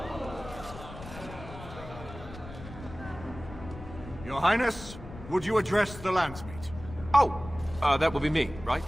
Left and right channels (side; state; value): left; noise; rumble, 14 dB below the sound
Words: Your Highness, would you address the Landsmeet? Oh, that would be me, right?